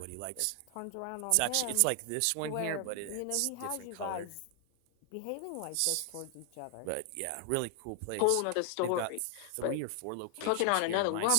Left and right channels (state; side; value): different; both; correlation 0.00